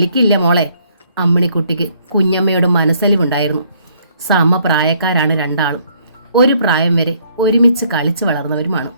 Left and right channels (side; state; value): both; inverted; correlation -0.66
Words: മോളെ. അമ്മിണിക്കുട്ടിക്ക് കുഞ്ഞമ്മയോട് മനസ്സലിവുണ്ടായിരുന്നു. സമപ്രായക്കാരാണ് രണ്ടാളും. ഒരു പ്രായം വരെ ഒരുമിച്ച് കളിച്ചു വളർന്നവരുമാണ്.